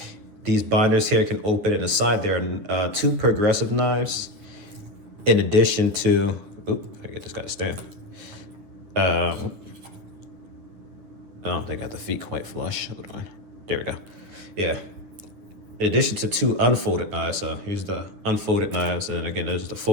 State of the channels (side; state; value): left; late; 10 ms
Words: these binders here can open, and aside there are 2 progressive knives, in addition to, I get this guy to stand. I don't think I got the feet quite flush. Hold on. There we go. Yeah. In addition to 2 unfolded knives. So here's the unfolded knives, and again, there's the